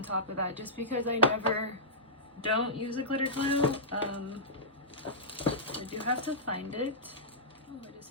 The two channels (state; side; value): normal; both; correlation -0.15